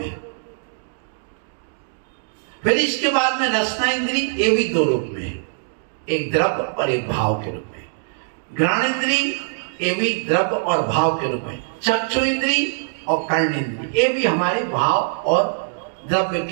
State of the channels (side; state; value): left; silent; digital silence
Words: है। फिर इसके बाद में रसना इंद्रिय, ये भी 2 रूप में है, एक द्रव्य और एक भाव के रूप में। घ्राण इंद्रिय, ये भी द्रव्य और भाव के रूप में। चक्षु इंद्रिय और कर्ण इंद्रिय, ये भी हमारे भाव और द्रव्य